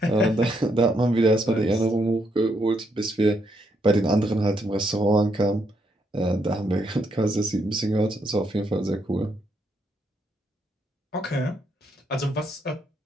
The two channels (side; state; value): both; normal; correlation 0.76